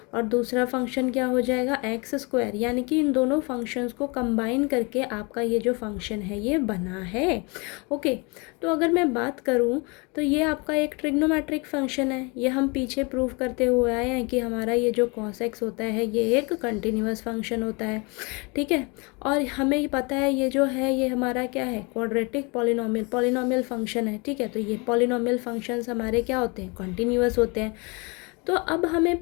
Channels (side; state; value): right; quieter; 29.6 dB